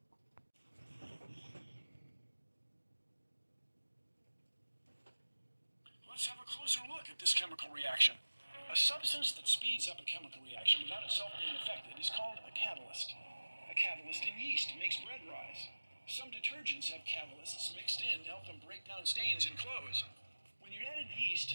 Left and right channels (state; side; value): inverted; both; correlation -1.00